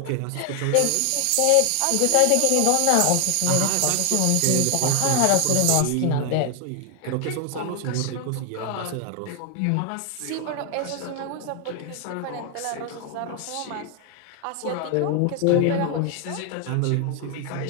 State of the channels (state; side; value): different; both; correlation 0.00